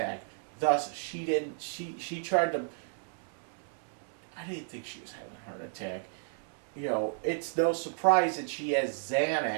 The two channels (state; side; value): silent; left; digital silence